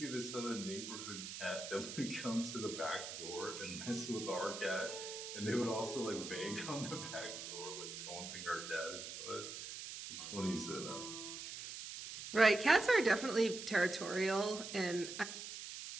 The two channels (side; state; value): right; noise; hiss, 8 dB below the sound